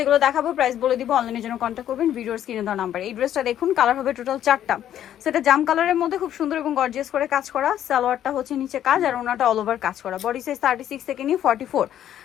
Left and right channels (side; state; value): right; quieter; 11.0 dB